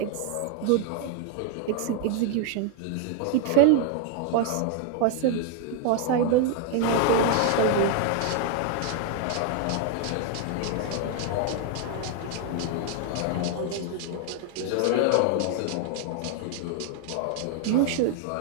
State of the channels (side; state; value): both; different; correlation 0.00